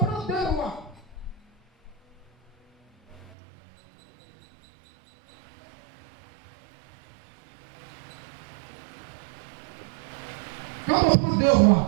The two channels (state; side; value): drops out; left; at 3.3 s